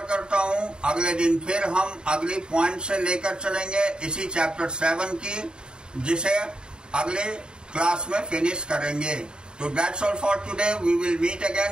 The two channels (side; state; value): left; late; 0.049 ms